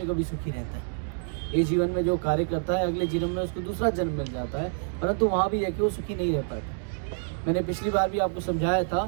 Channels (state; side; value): silent; left; 60 dB below the other